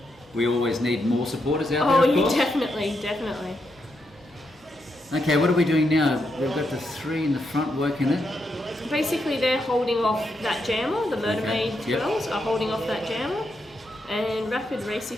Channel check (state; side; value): normal; both; correlation 0.82